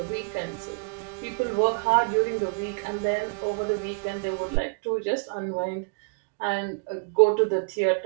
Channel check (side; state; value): left; quieter; 34.7 dB